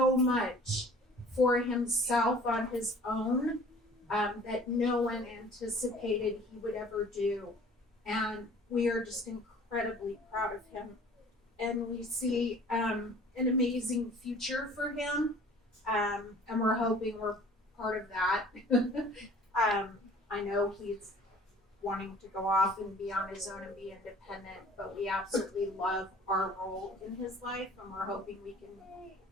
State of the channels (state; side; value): normal; both; correlation 0.50